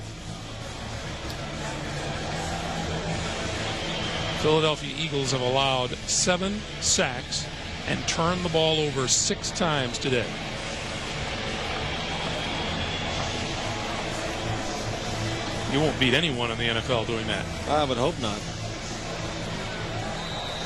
Philadelphia Eagles have allowed 7 sacks and turned the ball over 6 times today. You won't beat anyone in the NFL doing that. I would hope not.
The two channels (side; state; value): both; identical; correlation 1.00